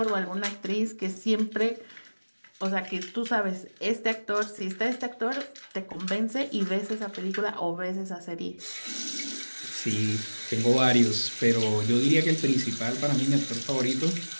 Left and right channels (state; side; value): inverted; both; correlation -1.00